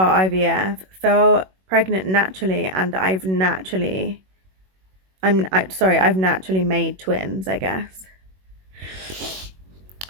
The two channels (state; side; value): late; left; 21 ms